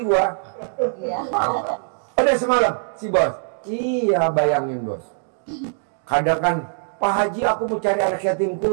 gua. Udah semalam si bos. Iya, bayangin bos. Kadang kan, Pak Haji aku mau cari anak yatim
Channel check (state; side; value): silent; left; digital silence